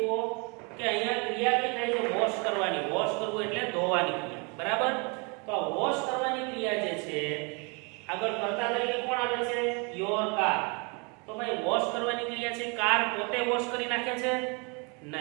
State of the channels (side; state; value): left; quieter; 32.1 dB